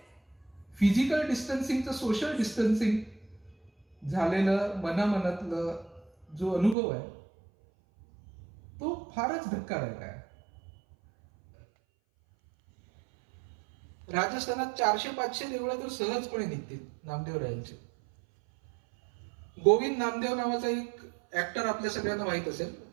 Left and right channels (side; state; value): left; drops out; at 6.8 s